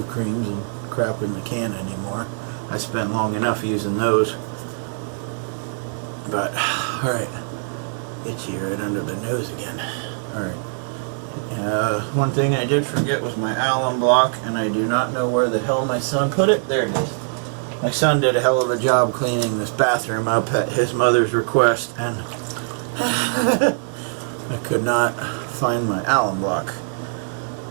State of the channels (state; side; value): silent; left; digital silence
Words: creams and crap in the can anymore. I spent long enough using those. But, alright. Itchy right under the nose again. Alright. One thing I did forget was my alum block, and I do not know where the hell my son put it. There it is. My son did a hell of a job cleaning this bathroom up at his mother's request, and I could not find my alum block.